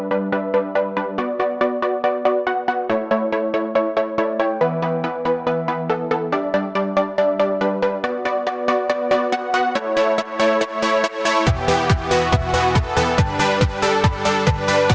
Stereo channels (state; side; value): identical; both; correlation 1.00